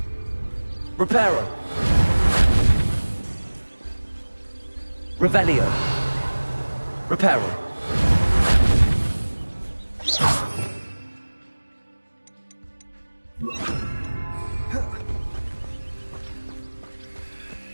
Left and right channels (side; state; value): both; inverted; correlation -1.00